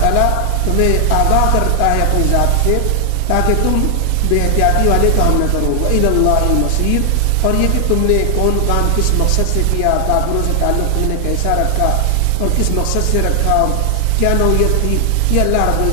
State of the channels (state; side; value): different; both; correlation 0.00